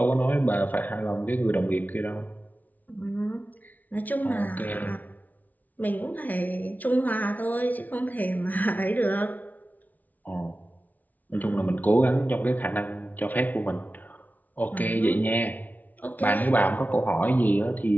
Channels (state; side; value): late; right; 0.077 ms